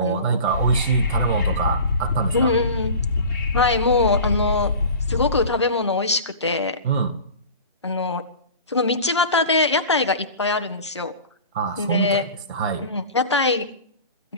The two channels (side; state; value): both; inverted; correlation -0.37